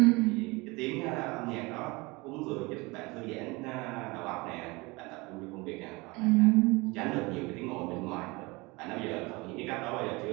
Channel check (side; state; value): left; quieter; 24.6 dB